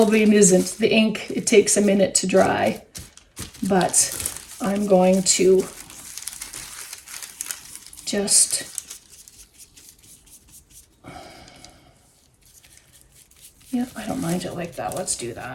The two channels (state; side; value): identical; both; correlation 1.00